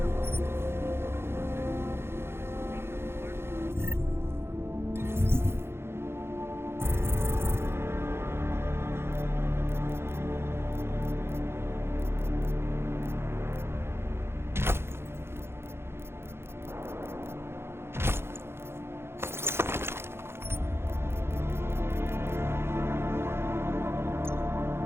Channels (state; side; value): late; left; 0.12 ms